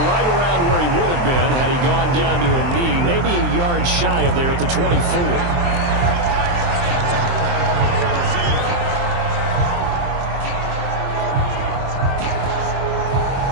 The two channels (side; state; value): left; late; 23 ms